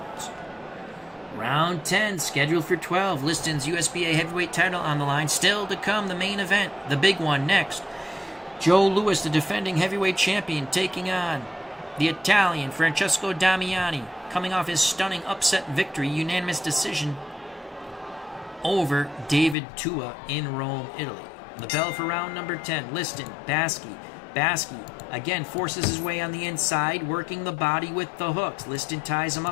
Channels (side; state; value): right; drops out; at 19.6 s